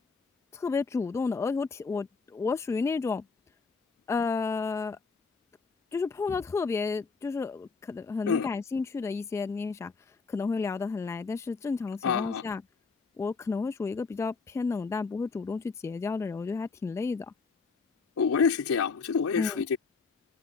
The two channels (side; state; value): right; quieter; 4.7 dB